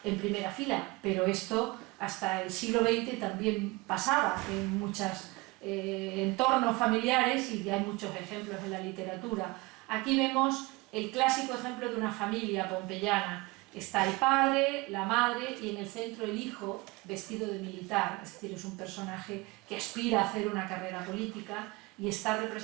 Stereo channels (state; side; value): quieter; left; 23.8 dB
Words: en primera fila, pero esto hasta el siglo XX también pasaba en muchos entornos familiares y hay muchos ejemplos en la literatura. Aquí vemos el clásico ejemplo de una familia pompeyana. Está el padre, la madre y en el centro el hijo vestido de militar, es decir, es un personaje que aspira a hacer una carrera política y está